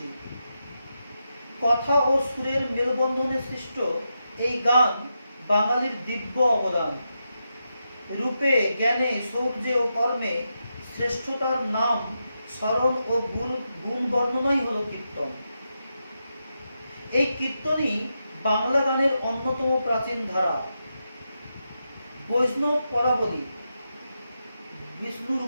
কথা ও সুরের মেলবন্ধনে সৃষ্ট এই গান বাঙালির দিব্য অবদান। রূপে, জ্ঞানে, শৌর্যে ও কর্মে শ্রেষ্ঠতার নাম স্মরণ ও গুণ বর্ণনাই হল কীর্তন। এই কীর্তনই বাংলা গানের অন্যতম প্রাচীন ধারা। বৈষ্ণব পদাবলী, বিষ্ণুর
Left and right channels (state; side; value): inverted; both; correlation -0.87